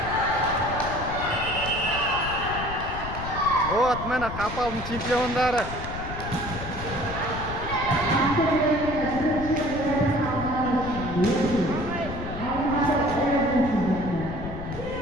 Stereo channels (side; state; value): left; noise; rumble, 8 dB below the sound